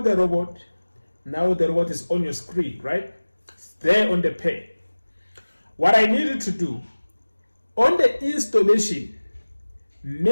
the robot, now the robot is on your screen, right? It's there on the page. What I need you to do, on the installation,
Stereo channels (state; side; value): inverted; both; correlation -1.00